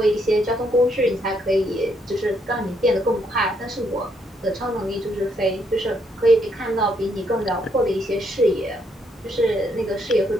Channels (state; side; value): normal; both; correlation 0.73